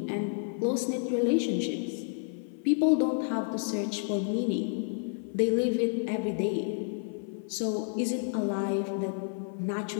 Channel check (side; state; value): right; silent; 57 dB below the other